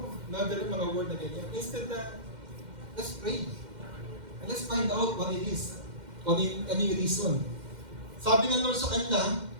Nagdala mga word na ganyan. Instead na, let's pray. And let's find out what it is. Ano yung reason. Sabi ng Lord sa kanila,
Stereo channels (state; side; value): late; left; 2.1 ms